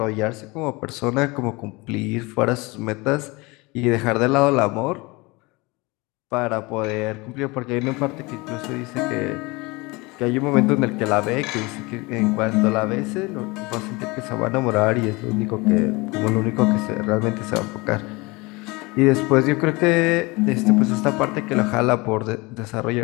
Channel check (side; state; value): right; quieter; 24.8 dB